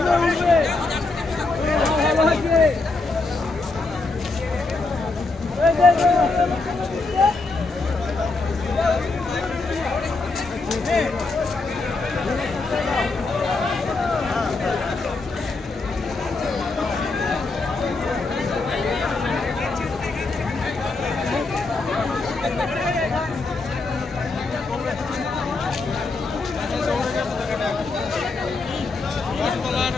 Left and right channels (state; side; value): quieter; right; 3.6 dB